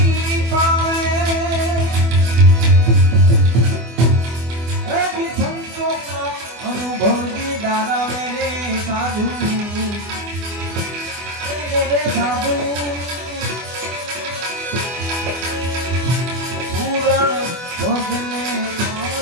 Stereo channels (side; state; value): left; late; 24 ms